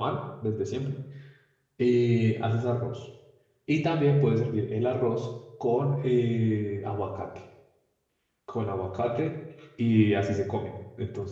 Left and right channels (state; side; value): identical; both; correlation 1.00